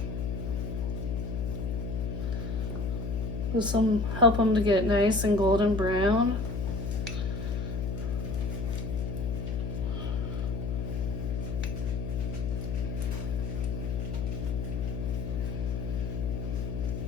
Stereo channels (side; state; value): left; noise; hum, 2 dB below the sound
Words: This will help them to get nice and golden brown.